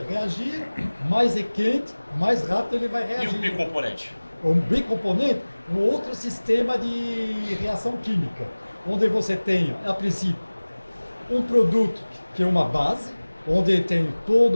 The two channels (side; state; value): both; inverted; correlation -1.00